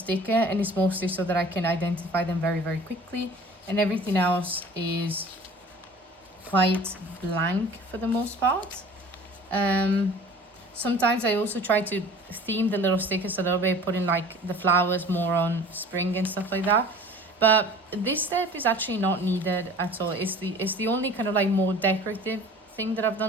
and it's mostly so that I can identify them very, very quickly. And everything else is quite blank for the most part. Sometimes I also try to theme the little stickers a little bit, putting like the flowers more on spring and stuff like that. But this step is actually not needed at all. It's the only kind of like more decorative thing that I've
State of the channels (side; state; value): both; normal; correlation 0.45